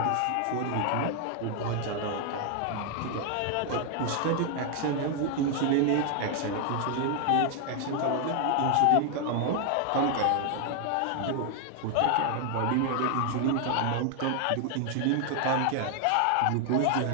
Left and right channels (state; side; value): different; both; correlation 0.00